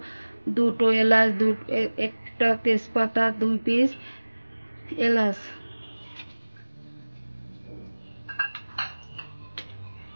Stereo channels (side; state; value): both; inverted; correlation -1.00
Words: দুটো এলাচ, একটা তেজপাতা, 2 পিস এলাচ।